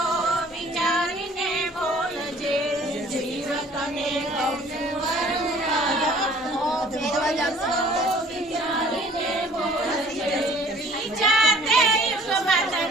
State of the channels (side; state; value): both; normal; correlation 0.53